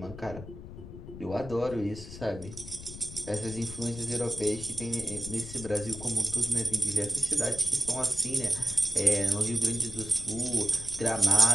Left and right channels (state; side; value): noise; left; rumble, 13 dB below the sound